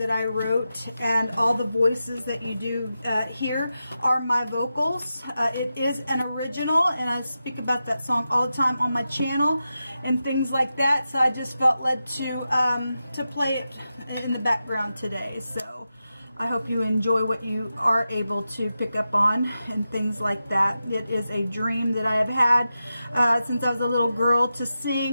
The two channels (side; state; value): both; inverted; correlation -0.91